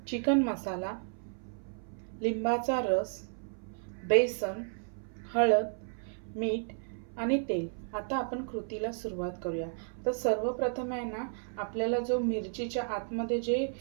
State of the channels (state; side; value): silent; left; 56 dB below the other